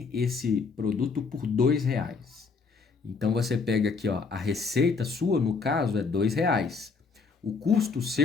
esse produto por R$ 2. Então você pega aqui, ó, a receita sua, no caso, é R$ 2. O custo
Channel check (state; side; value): quieter; right; 4.8 dB